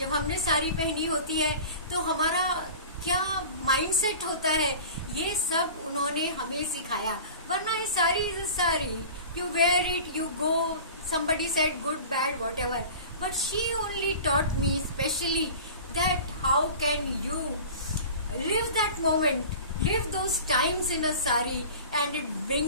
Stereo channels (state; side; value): inverted; both; correlation -0.38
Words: हमने साड़ी पहनी होती है तो हमारा क्या माइंडसेट होता है, ये सब उन्होंने हमें सिखाया. वरना ये sari is sari, you wear it, you go, somebody said good, bad, whatever. But she only taught me specially that how can you live that moment, live those times in a sari, and it